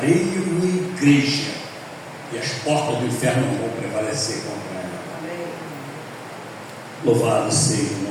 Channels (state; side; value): identical; both; correlation 1.00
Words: uma igreja, e as portas do inferno não vão prevalecer contra ela. Amém. Louvado seja